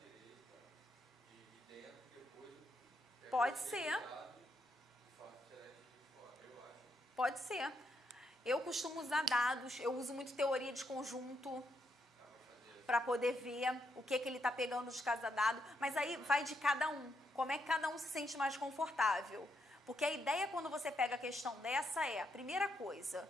Pode ser. Pode ser. Eu costumo usar dados, eu uso muito teoria de conjunto para poder ver o que ele está pegando de cada dado, mas aí vai de cada um, como é que cada um se sente mais confortável. Porque a ideia quando você pega a questão dessa é, primeira coisa,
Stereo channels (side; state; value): both; normal; correlation 0.79